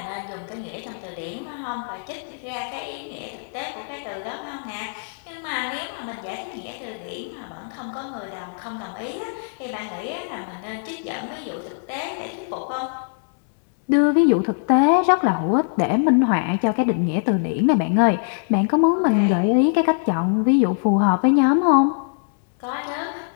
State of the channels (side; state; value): right; silent; digital silence